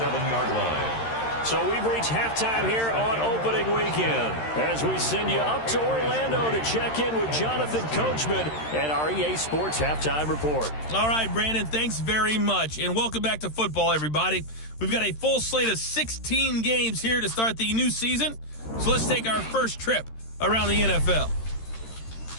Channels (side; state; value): right; late; 13 ms